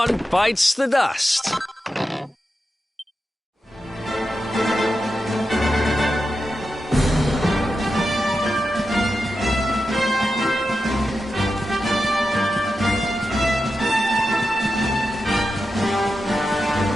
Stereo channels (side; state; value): both; normal; correlation 0.90